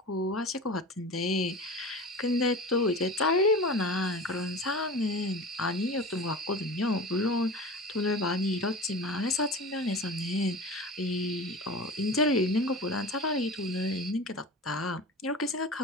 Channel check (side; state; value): both; normal; correlation 0.33